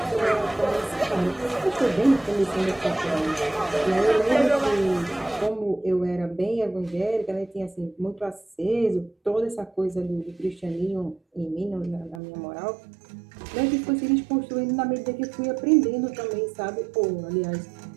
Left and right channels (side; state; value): left; drops out; at 12.2 s